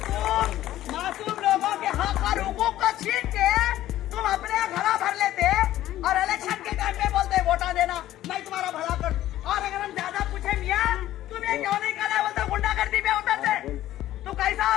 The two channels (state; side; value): quieter; right; 13.9 dB